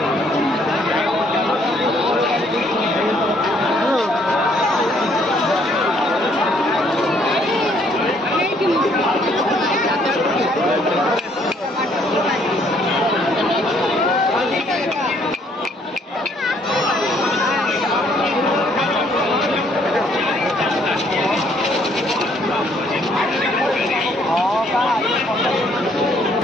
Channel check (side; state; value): both; normal; correlation 0.65